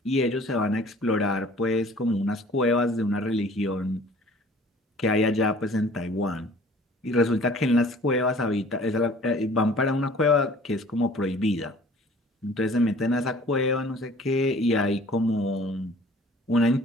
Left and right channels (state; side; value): normal; both; correlation 0.50